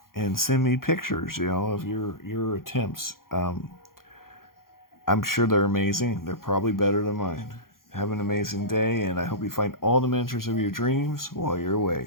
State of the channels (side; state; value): right; late; 0.92 ms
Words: and send me pictures, of your attempts. I'm sure they're amazing. They're probably better than mine. Have an amazing day, and I hope you find all the miniatures of your dreams while you're